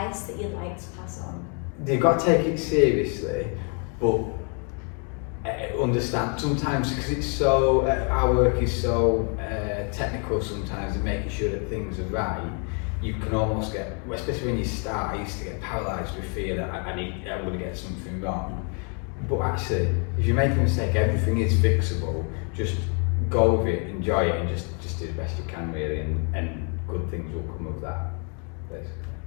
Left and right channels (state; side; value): quieter; right; 39.0 dB